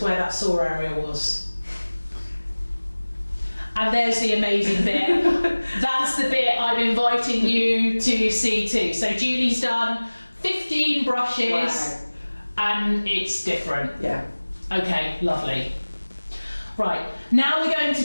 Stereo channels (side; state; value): both; inverted; correlation -1.00